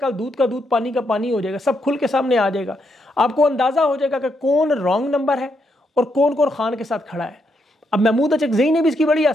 दूध का दूध पानी का पानी हो जाएगा, सब खुल के सामने आ जाएगा। आपको अंदाज़ा हो जाएगा कि कौन रॉन्ग नंबर है और कौन कौन खान के साथ खड़ा है। अब महमूद अचकज़ई ने भी इसकी बड़ी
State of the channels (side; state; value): both; normal; correlation 0.79